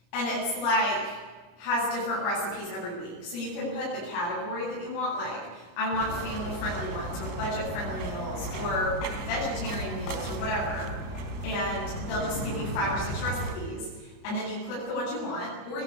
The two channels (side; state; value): right; late; 34 ms